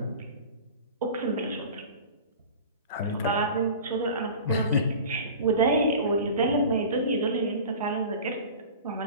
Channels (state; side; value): inverted; both; correlation -0.37